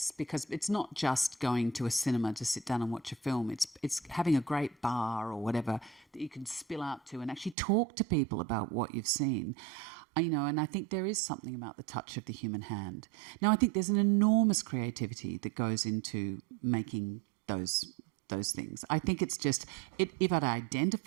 because it's not just going to a cinema to sit down and watch a film. It's having a great bar or whatever that you can spill out to and actually talk to people about what you've seen. You know, and I think there is something about the touch of the human hand. Now, I think there's an enormous creativity that goes into making those things. I think it's just, if it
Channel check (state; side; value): drops out; left; at 7.6 s